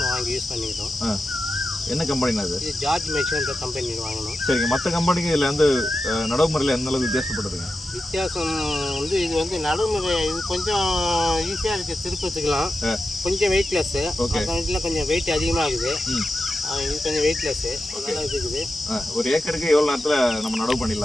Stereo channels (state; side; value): normal; both; correlation 0.91